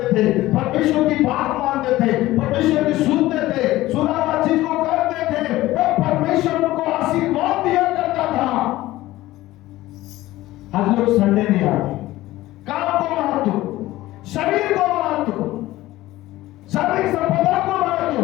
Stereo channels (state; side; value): quieter; right; 16.8 dB